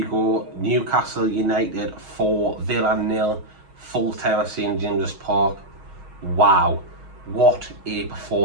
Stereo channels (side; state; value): left; late; 6.4 ms